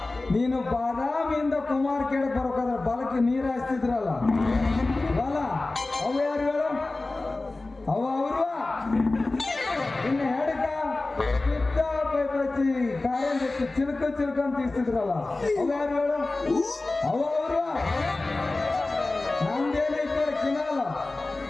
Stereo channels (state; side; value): quieter; right; 3.2 dB